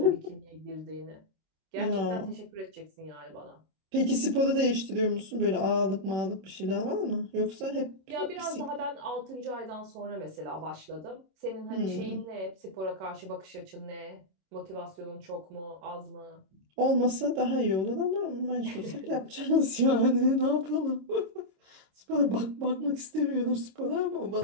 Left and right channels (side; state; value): left; late; 26 ms